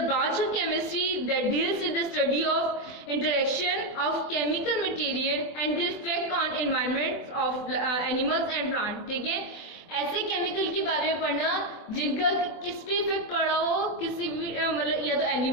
branch of chemistry that deals with the study of interaction of chemical material and the effect on environment of animals and plant. ठीक है, ऐसे chemical के बारे में पढ़ना जिनका किस पे इफेक्ट पड़ा हो, किसी भी मतलब या तो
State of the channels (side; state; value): right; late; 24 ms